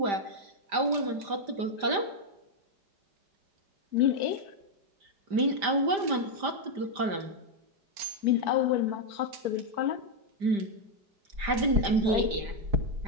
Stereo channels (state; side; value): late; left; 5.0 ms